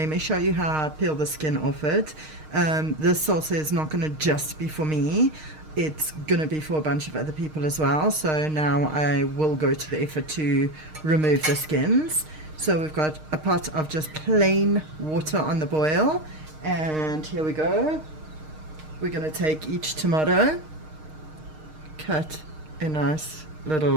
me show you how I peel the skin off it. This salsa is not going to just be for me. It's going to be for a bunch of other people as well. So now I will go to the effort to remove the skins. So we've got a pot of just plain water on the boil, and here we go. We're going to take each tomato, cut a nice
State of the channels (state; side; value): late; left; 6.5 ms